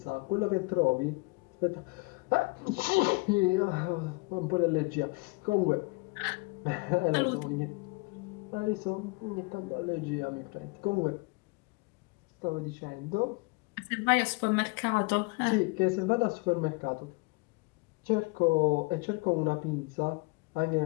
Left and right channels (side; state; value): right; quieter; 27.1 dB